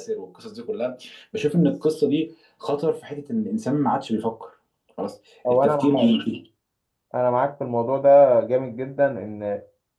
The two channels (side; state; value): both; identical; correlation 1.00